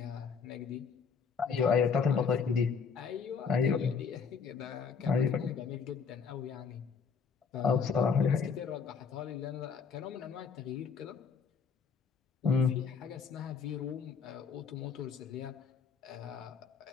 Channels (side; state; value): right; quieter; 5.9 dB